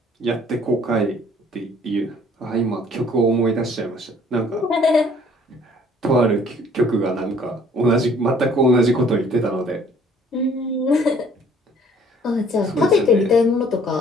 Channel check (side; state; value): both; normal; correlation 0.57